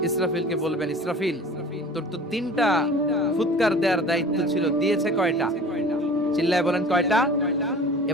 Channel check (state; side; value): normal; both; correlation 0.42